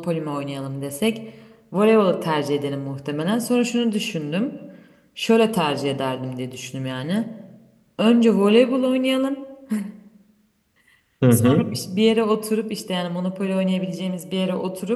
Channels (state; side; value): identical; both; correlation 1.00